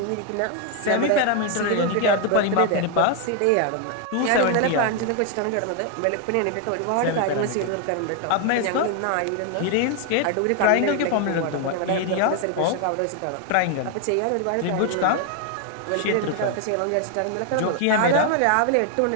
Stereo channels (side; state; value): both; different; correlation 0.01